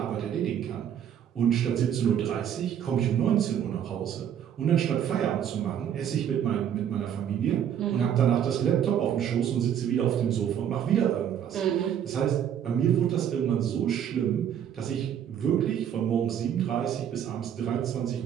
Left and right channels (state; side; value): quieter; left; 9.3 dB